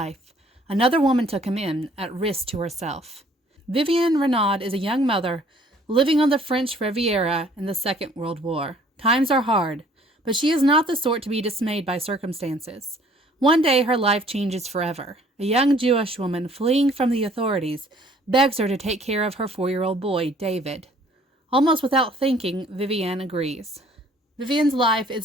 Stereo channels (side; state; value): both; normal; correlation 0.57